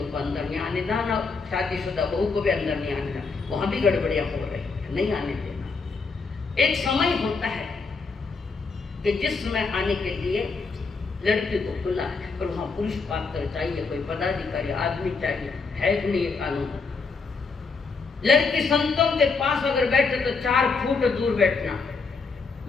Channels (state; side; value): quieter; right; 4.5 dB